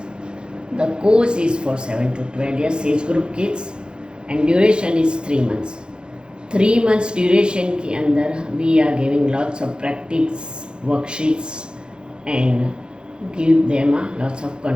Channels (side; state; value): left; late; 0.050 ms